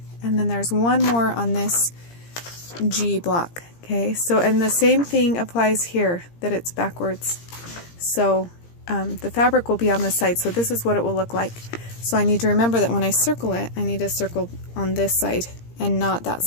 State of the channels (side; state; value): right; late; 17 ms